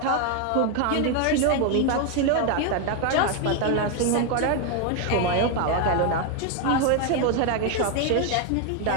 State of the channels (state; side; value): different; both; correlation 0.01